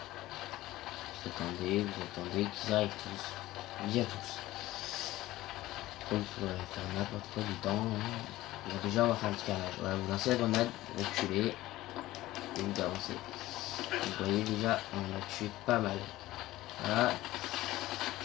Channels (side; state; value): right; quieter; 16.6 dB